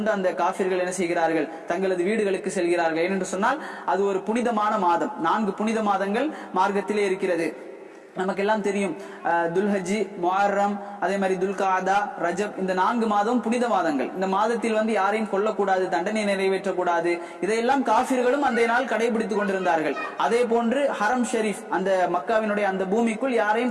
அந்த காஃபிர்கள் என்ன செய்கிறார்கள், தங்களது வீடுகளுக்கு செல்கிறார்கள். ஏனென்று சொன்னால் அது ஒரு புனிதமான மாதம், 4 புனித மாதங்கள் மார்க்கத்திலே இருக்கிறது. நமக்கு எல்லாம் தெரியும், துல்ஹஜ், முஹர்ரம், அதே மாதிரி துல்காதா, ரஜப், இந்த 4 மாதம் புனித மாதங்கள். இந்த மாதத்தில் வந்து யாரையும் கொல்லக்கூடாது, தண்டனை நிறைவேற்றக்கூடாது, இதையெல்லாம் காஃபிர்களும் அந்த நாள் கடைபிடித்துக் கொண்டிருந்தார்கள். அதே போன்று ஹரம் ஷெரீப், அந்த மக்காவினுடைய அந்த பூமிக்குள்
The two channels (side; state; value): both; identical; correlation 1.00